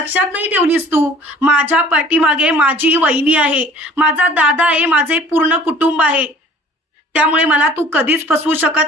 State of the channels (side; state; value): both; normal; correlation 0.50